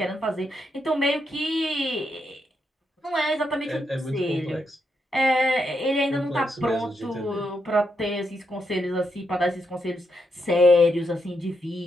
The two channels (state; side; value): normal; both; correlation 0.81